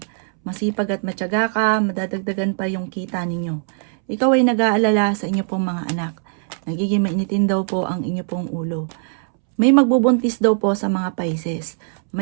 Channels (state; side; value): silent; left; 65 dB below the other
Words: Masipag at matyaga ka, madadagdagan pa yung kita ninyo. Ikaw ay nag-aalala sa inyo pong mga anak. Nagiging mainitin daw po ang inyo pong ulo. May magbubuntis daw po sa mga Pisces.